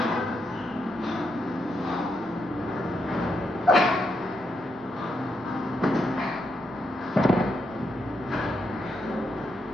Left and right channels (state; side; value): noise; right; rumble, 25 dB below the sound